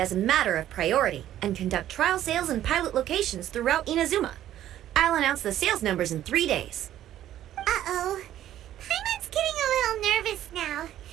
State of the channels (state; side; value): quieter; left; 12.2 dB